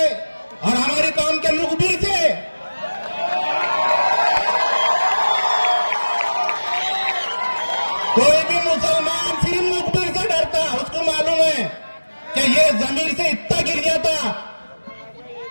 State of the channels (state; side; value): inverted; both; correlation -1.00